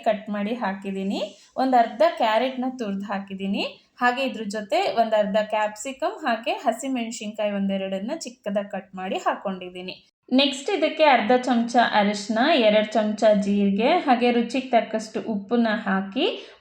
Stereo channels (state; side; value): identical; both; correlation 1.00